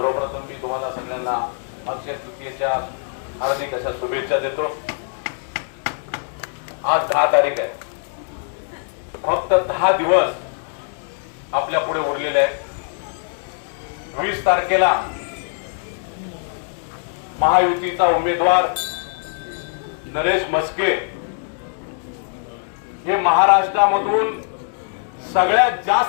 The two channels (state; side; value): silent; right; 59 dB below the other